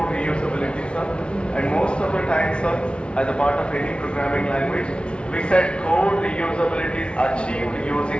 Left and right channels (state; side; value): late; right; 0.058 ms